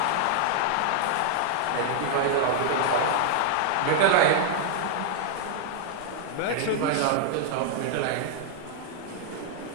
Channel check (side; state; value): both; different; correlation 0.00